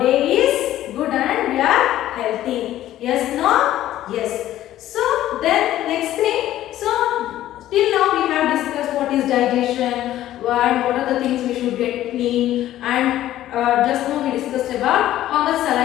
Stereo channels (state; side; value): quieter; right; 13.4 dB